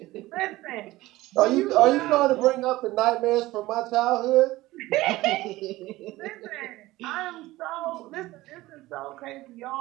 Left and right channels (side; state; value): left; quieter; 18.1 dB